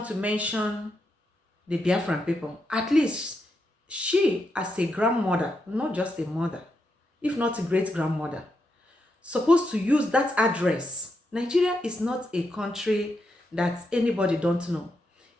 to mention the Biafran people, at least she as a grandmother, not just a mother, if not a great-grandmother, supposed to use that address. Nigeria is not a country that anybody don't know.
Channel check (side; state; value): both; normal; correlation 0.83